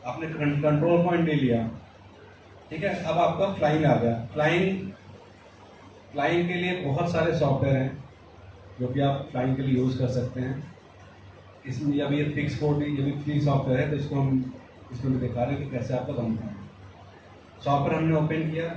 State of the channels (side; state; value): both; identical; correlation 1.00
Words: आपने कंट्रोल पॉइंट ले लिया, ठीक है। अब आपका फ्लाइंग आ गया। फ्लाइंग के लिए बहुत सारे सॉफ्टवेयर हैं जो कि आप फ्लाइंग के लिए यूज़ कर सकते हैं। इसमें अभी ये फिक्स कोड ये भी फ्री सॉफ्टवेयर है, तो इसको हम इसमें भी दिखा रहे हैं कि कैसे आपका बनता है। सॉफ्टवेयर हमने ओपन किया,